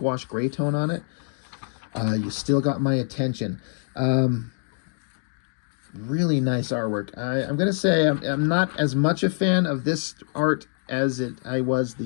gray tone on it. You still got my attention. Really nice artwork. I'm going to say I'm not as much a fan of this art as I was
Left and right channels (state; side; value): silent; right; 62 dB below the other